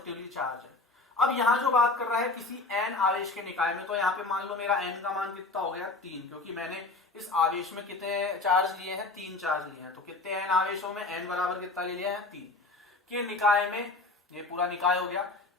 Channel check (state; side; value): quieter; right; 3.5 dB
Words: चार्ज है। अब यहां जो बात कर रहा है किसी n आवेश के निकाय में, तो यहाँ पे मान लो मेरा n का मान कितना हो गया 3, क्योंकि मैंने इस आवेश में कितने चार्ज लिए हैं, 3 चार्ज लिए हैं। तो कितने n आवेशों में n बराबर कितना ले लिया है, 3 के निकाय में, ये पूरा निकाय हो गया।